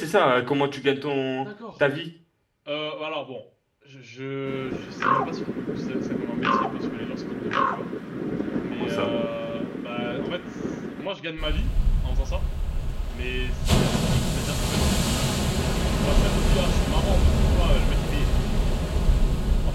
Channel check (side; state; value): both; identical; correlation 1.00